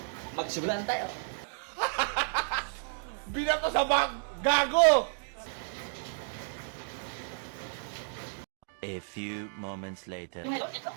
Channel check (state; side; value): silent; left; digital silence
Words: Magsimulan tayo. Binato sa bag! Gago! A few moments later. Ngayon, ito.